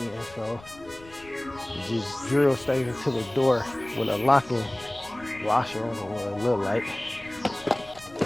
So you just drill straight into the door with a locking washer on it, what it look like.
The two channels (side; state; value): left; noise; rumble, 22 dB below the sound